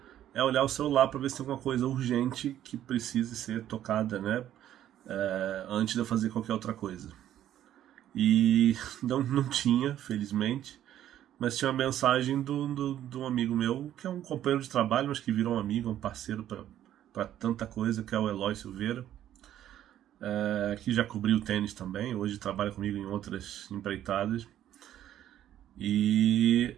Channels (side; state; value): left; quieter; 11.6 dB